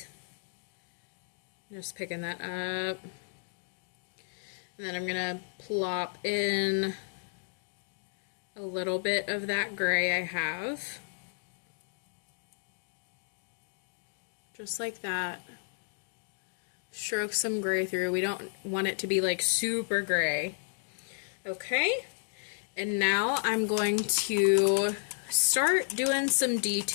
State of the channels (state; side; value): silent; right; digital silence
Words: Just picking that up. And then I'm going to plop in a little bit of that gray I have. Just like that. Stroke some gray through. We don't want it to be like super gray. Okay, and now I'm going to start doing some